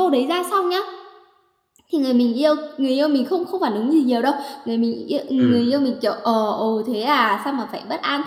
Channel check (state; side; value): identical; both; correlation 1.00